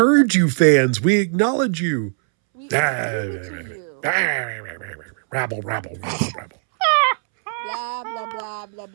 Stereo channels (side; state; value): left; silent; 65 dB below the other